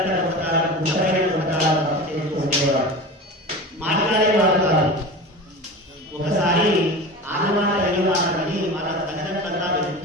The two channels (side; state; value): both; normal; correlation 0.31